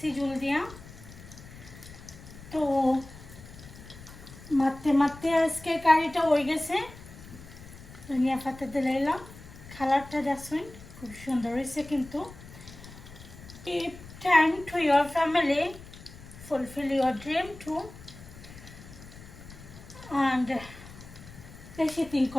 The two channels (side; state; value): left; noise; rumble, 17 dB below the sound